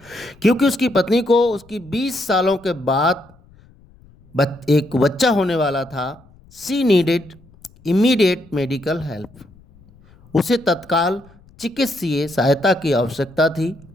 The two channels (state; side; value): noise; left; rumble, 27 dB below the sound